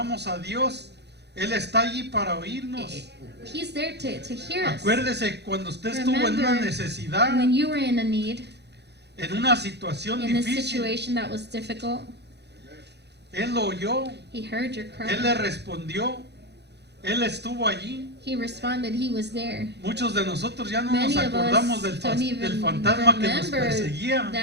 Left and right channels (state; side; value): late; left; 0.49 ms